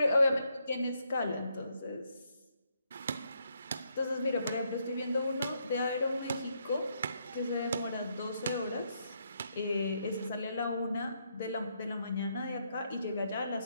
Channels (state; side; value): inverted; both; correlation -0.76